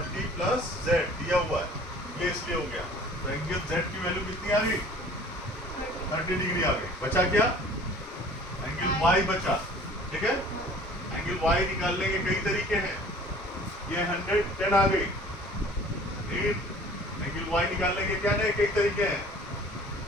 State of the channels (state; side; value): normal; both; correlation 0.49